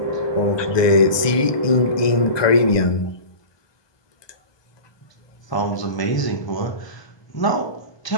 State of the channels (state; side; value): late; right; 1.2 ms